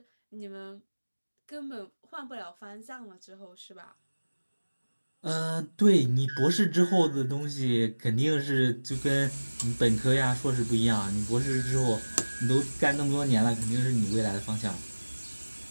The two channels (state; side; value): inverted; both; correlation -1.00